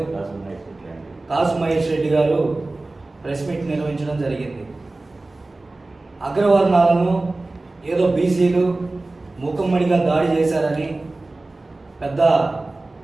కాసు మహేష్ రెడ్డి గారు ప్రెస్ మీట్ నిర్వహించడం జరిగింది. అగ్రవర్ణాలను ఏదో బీసీలు మూకమ్మడిగా దాడి చేశారని పెద్ద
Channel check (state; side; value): quieter; left; 3.1 dB